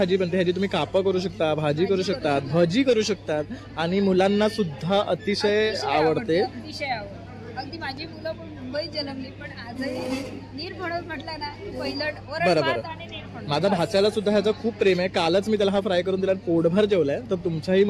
बनते. ह्याची तुम्ही कापं करू शकता, भाजी करू शकतात, भजी करू शकतात आणि मुलांना सुद्धा अतिशय आवडते. अतिशय आवडते. अगदी माझी मुलं पण मुंबईत जन्मली, पण आजही नीरफणस म्हटलं ना पहिलं वरण भात आणि नीरफणस. माझ्या भाच्याला सुद्धा ह्याचं खूप प्रेम आहे. कालच मी त्याला हा फ्राय करून दिला, पोटभर जेवलाय. तर तुमच्याही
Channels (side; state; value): both; identical; correlation 1.00